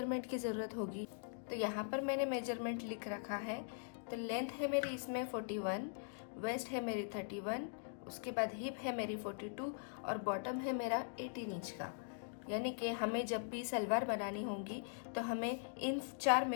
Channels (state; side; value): silent; right; digital silence